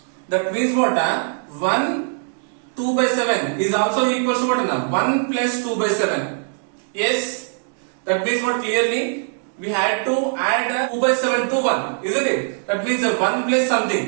That means what? 1, 2 by 7 is also equal to what? 1 plus 2 by 7. Yes, that means what? Clearly we had to add 2 by 7 to 1, isn't it? That means 1 plus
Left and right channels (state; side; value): silent; left; digital silence